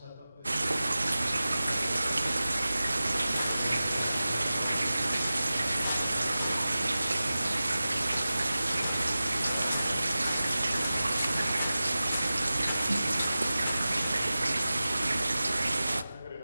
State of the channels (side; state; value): both; inverted; correlation -0.95